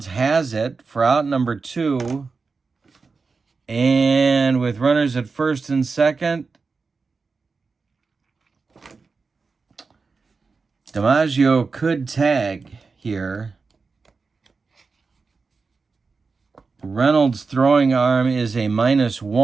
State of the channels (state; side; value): quieter; left; 4.5 dB